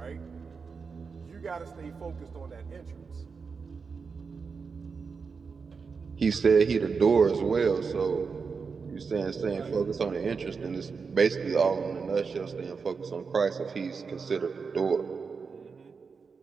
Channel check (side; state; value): left; quieter; 5.2 dB